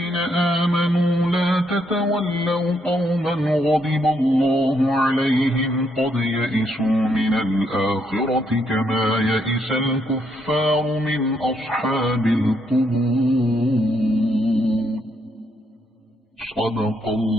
آمنوا لا تتولوا قوما غضب الله عليهم قد يئسوا من الآخرة كما يئس الكفار من أصحاب القبور صدق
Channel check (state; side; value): normal; both; correlation 0.75